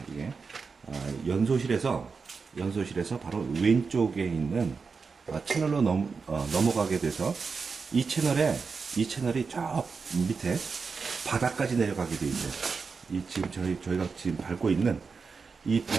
이게 연소실에서 바로 왼쪽에 있는 채널로 넘어가게 돼서 이 채널이 저 밑에 바닥까지 내려가게 돼 있어요. 이 지금 저희가 지금 밟고 있는 이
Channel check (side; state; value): left; quieter; 5.0 dB